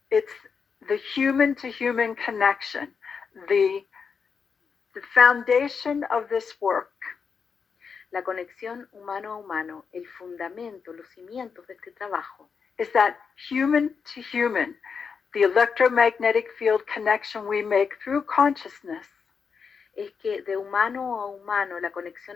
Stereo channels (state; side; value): quieter; right; 5.9 dB